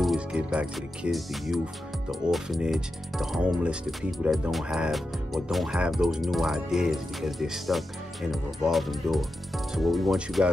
is give back to the kids, the youth, the orphanage, the homeless, the people that don't have those new ideas because they're stuck in a revolving door. So what we want you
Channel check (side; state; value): both; normal; correlation 0.90